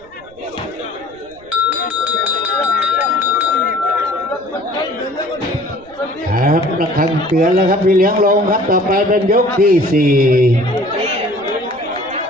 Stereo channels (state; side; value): noise; right; rumble, 27 dB below the sound